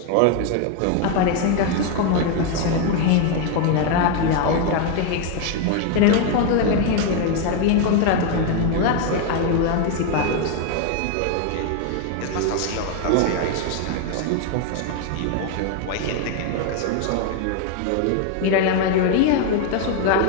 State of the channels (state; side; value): different; both; correlation 0.01